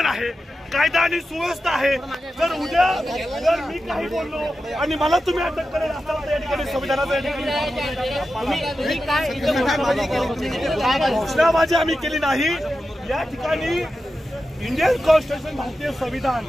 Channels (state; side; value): normal; both; correlation 0.91